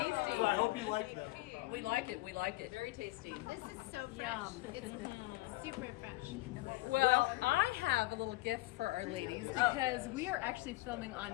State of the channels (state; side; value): quieter; right; 20.1 dB